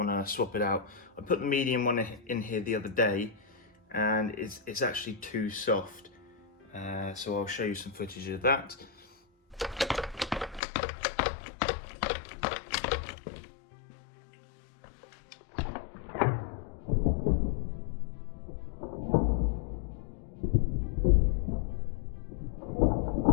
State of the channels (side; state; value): right; drops out; at 10.6 s